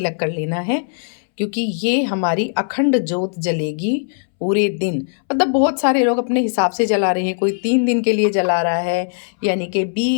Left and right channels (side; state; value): right; silent; 67 dB below the other